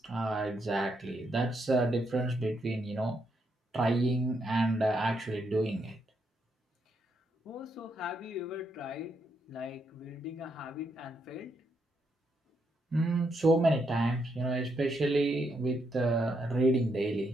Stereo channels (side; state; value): both; normal; correlation 0.78